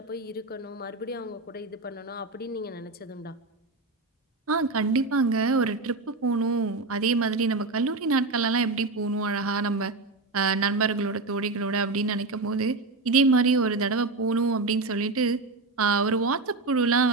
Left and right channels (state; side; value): quieter; left; 3.6 dB